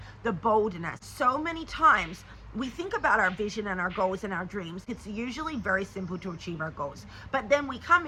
the boldness. So many times we think about our vision and our goals and our dreams. It's usually very simple to achieve our goals. But then we come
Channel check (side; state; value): both; identical; correlation 1.00